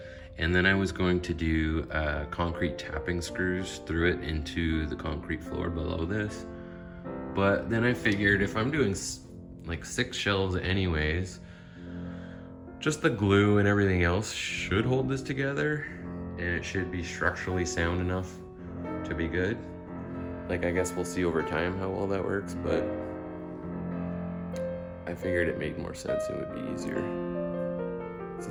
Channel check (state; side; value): identical; both; correlation 1.00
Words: And then I was going to do concrete tapping screws through it into the concrete floor below this. But then I figured if I'm doing like 6 shelves anyways, just the glue and everything else should hold this together, and it should be structurally sound enough to be good. Like, I guess we'll see over time how well that works, but I figured it made more sense and would be easier. This